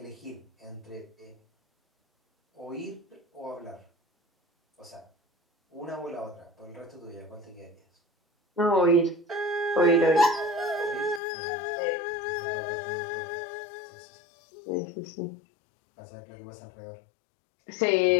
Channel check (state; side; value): drops out; right; at 11.2 s